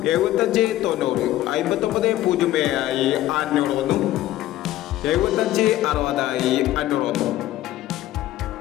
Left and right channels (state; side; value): quieter; right; 14.6 dB